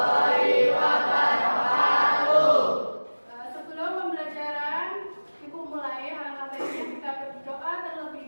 wabarakatuh. Sebelum pembelajaran Ibu mulai, alangkah baiknya kita berdoa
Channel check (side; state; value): both; inverted; correlation -1.00